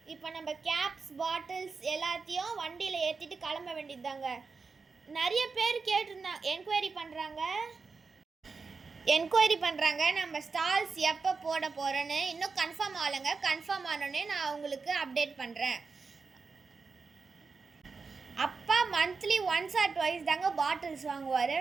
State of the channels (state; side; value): quieter; left; 4.6 dB